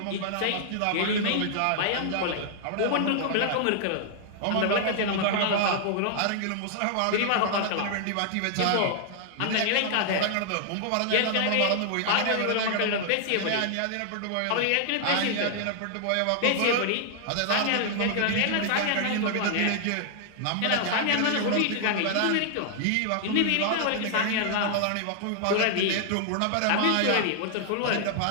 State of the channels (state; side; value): different; both; correlation 0.00